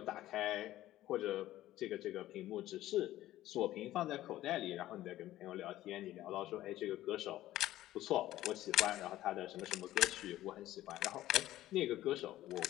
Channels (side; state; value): right; quieter; 14.6 dB